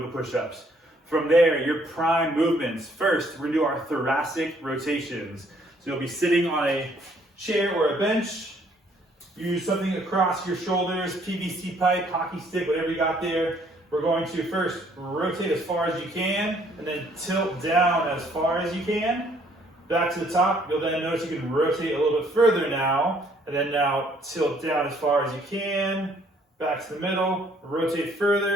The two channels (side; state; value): both; normal; correlation 0.64